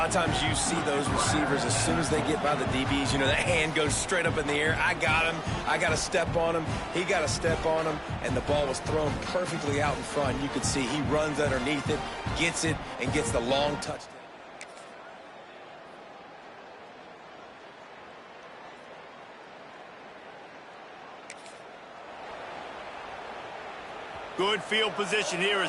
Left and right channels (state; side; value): identical; both; correlation 1.00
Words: of times you see those receivers, as soon as they get by the DBs, you know, that hand goes straight up in the air. I got him. I got to step on him. He got to step on him. And the ball was thrown perfectly out in front. You could see he runs underneath it, gets it, and gets the long touchdown. Good field position here